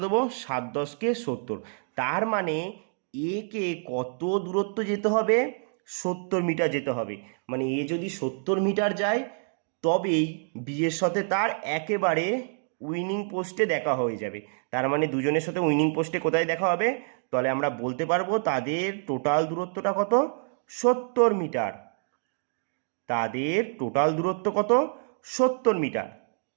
দেবো, 7 10 70, তার মানে এ কে কত দূরত্ব যেতে হবে, 70 মিটার যেতে হবে, মানে এ যদি 70 মিটার যায় তবেই বি এর সাথে তার একেবারে উইনিং পোস্টে দেখা হয়ে যাবে। তার মানে দুজনের সাথে উইনিং পোস্টে কোথায় দেখা হবে, তাহলে আমরা বলতে পারবো তাদের টোটাল দূরত্বটা কত, 70 মিটার, তাদের টোটাল দূরত্ব কত 70 মিটার,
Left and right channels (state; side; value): silent; left; 60 dB below the other